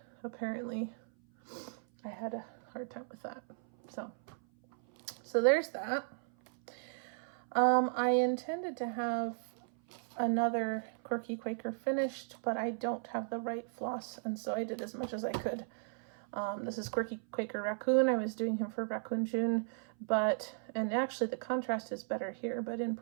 had a hard time with that. So there's that. I intended to have another Quirky Quaker finished, but I don't have the right floss, and so I did as much as I could. This is Quirky Quaker Raccoon. I was doing him for Raccoon June, and actually the contrast is better here, but in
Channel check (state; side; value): silent; left; 54 dB below the other